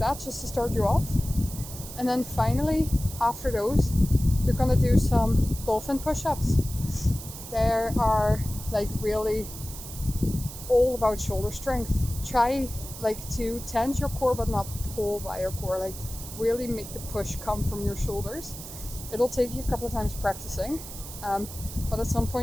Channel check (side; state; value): right; noise; hiss, 12 dB below the sound